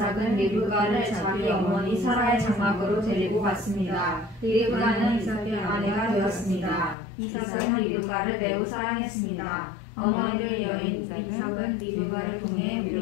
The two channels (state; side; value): drops out; right; at 7.0 s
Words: 리브가를 자기 어머니 사라의 장막으로 데리고 갔습니다. 리브가는 이삭의 아내가 되었습니다. 이삭은 리브가를 매우 사랑했습니다. 어머니를 여인 이삭은 리브가를 통해